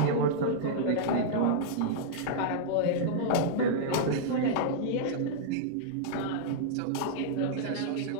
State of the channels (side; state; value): both; different; correlation -0.02